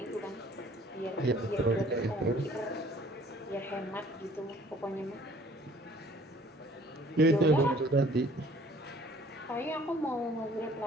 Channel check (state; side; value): normal; both; correlation 0.55